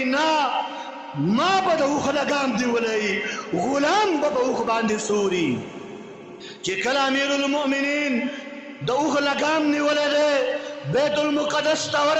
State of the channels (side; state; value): both; identical; correlation 1.00